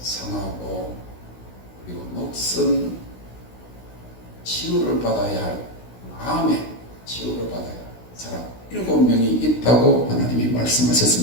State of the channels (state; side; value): late; right; 16 ms